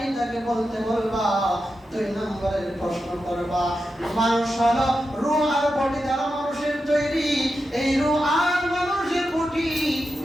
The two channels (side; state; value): both; normal; correlation 0.89